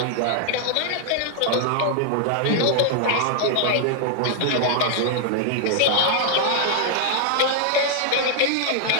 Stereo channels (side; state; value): both; different; correlation -0.01